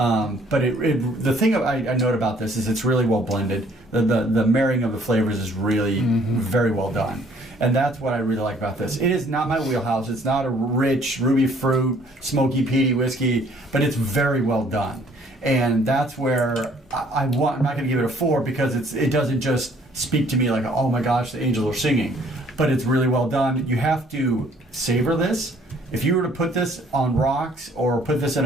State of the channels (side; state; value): both; normal; correlation 0.60